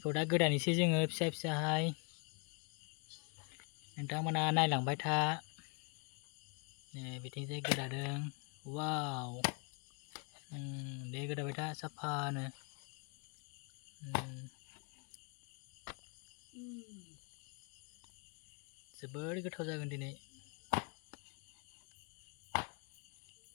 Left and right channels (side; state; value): right; quieter; 35.0 dB